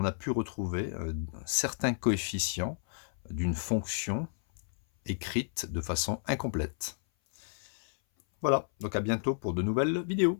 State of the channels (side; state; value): right; silent; 57 dB below the other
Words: a pu retrouver certains coefficients d'une fonction écrite de façon incomplète. Voilà, donc à bientôt pour de nouvelles